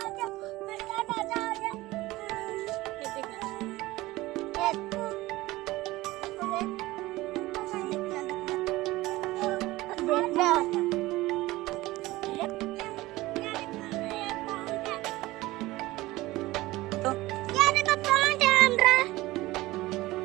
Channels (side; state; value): left; quieter; 18.7 dB